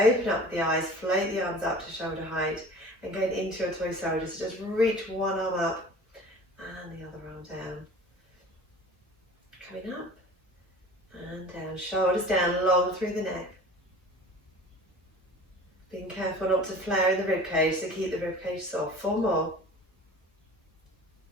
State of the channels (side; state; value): both; normal; correlation 0.42